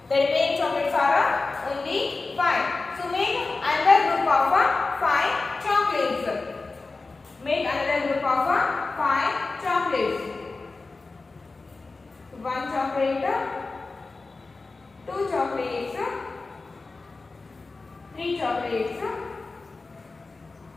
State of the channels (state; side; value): quieter; right; 3.7 dB